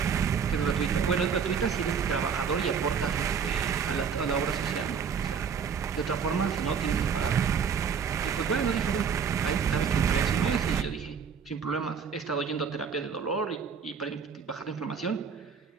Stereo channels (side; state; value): left; quieter; 6.5 dB